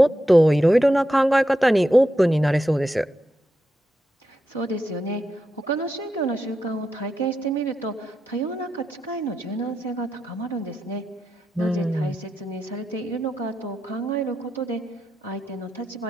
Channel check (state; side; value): normal; both; correlation 0.87